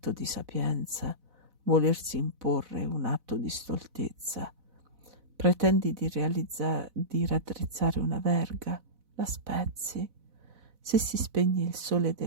di sapienza, volersi imporre è un atto di stoltezza. Pretendi di raddrizzare una verga, la spezzi. Se si spegne il sole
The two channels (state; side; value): late; left; 4.0 ms